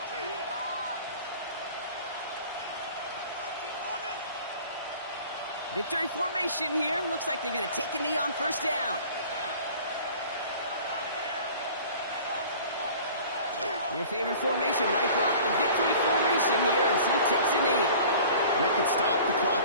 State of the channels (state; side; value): inverted; both; correlation -0.45